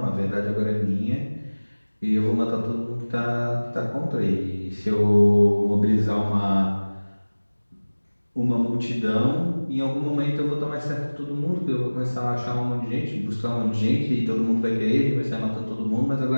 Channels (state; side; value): inverted; both; correlation -1.00